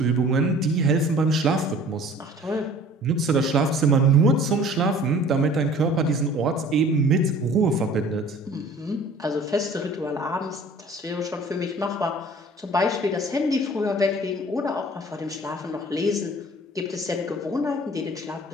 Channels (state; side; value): normal; both; correlation 0.48